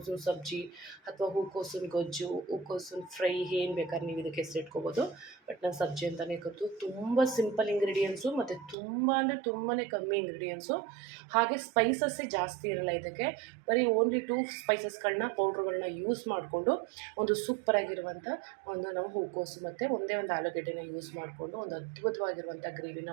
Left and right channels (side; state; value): left; drops out; at 8.8 s